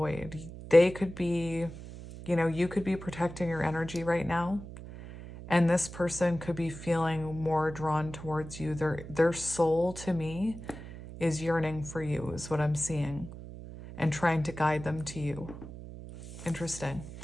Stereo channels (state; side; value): noise; right; hum, 13 dB below the sound